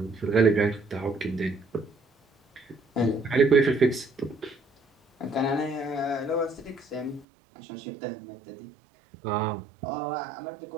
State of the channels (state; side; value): drops out; left; at 7.2 s